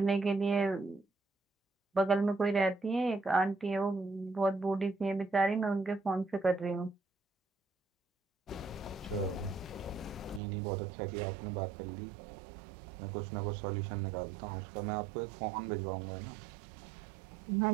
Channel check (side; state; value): left; drops out; at 10.4 s